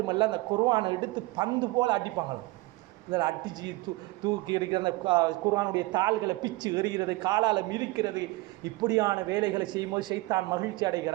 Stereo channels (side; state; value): left; quieter; 21.6 dB